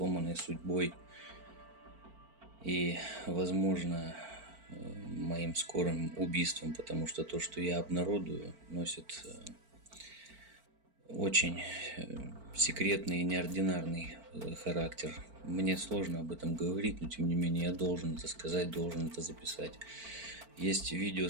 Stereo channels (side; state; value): left; late; 4.5 ms